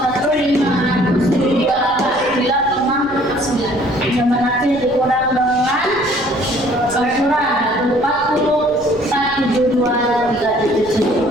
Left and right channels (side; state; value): left; noise; rumble, 20 dB below the sound